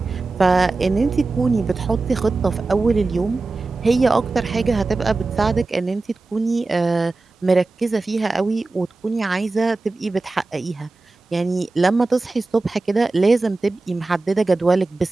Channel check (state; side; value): quieter; left; 3.4 dB